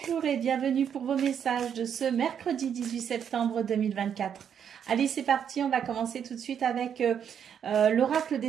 et bienvenue pour vos messages de ce mercredi 18 septembre 2024. Allez, c'est parti, on va commencer tout de suite avec l'oracle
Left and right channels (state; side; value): quieter; left; 8.3 dB